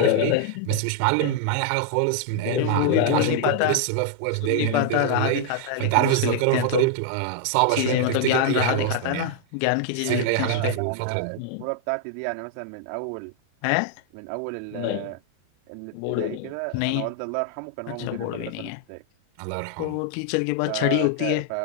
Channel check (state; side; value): different; both; correlation 0.00